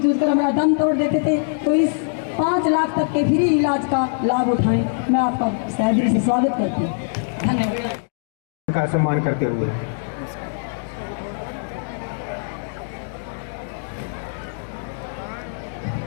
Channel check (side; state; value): right; silent; digital silence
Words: कर हमारा दम तोड़ देते थे, तो इस 5 लाख तक के फ्री इलाज का लाभ उठाएं। मैं आपका दिल से स्वागत करती हूँ। धन्यवाद। का सम्मान करते हुए